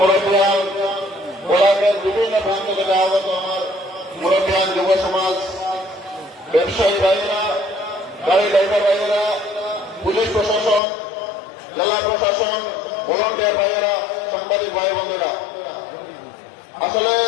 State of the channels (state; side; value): drops out; right; at 10.8 s